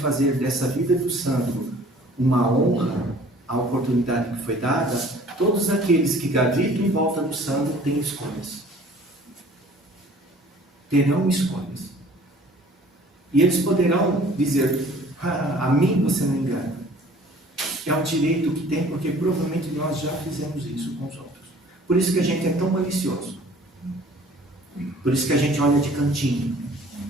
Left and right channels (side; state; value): both; normal; correlation 0.51